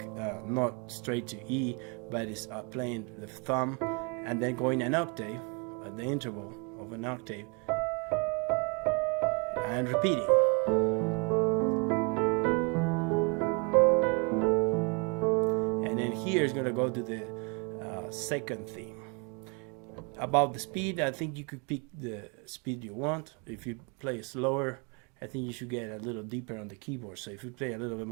not straight to E, but it's playing the thumb and then going an octave at the interval of an octave and repeating. And then here is going to go to the second theme. About the speed, I think you could pick the speed you want. If you play slower, I think you should get a little deeper on the keyboard. So if you play a little bit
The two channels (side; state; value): left; quieter; 32.6 dB